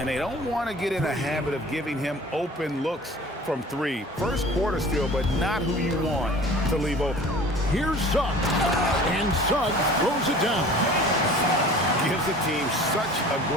they don't want to get in a habit of giving him open looks from 3. First quarter still, but not who you want to leave open. Here's Suggs. And Suggs throws it down. Gives the team such a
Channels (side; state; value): both; normal; correlation 0.44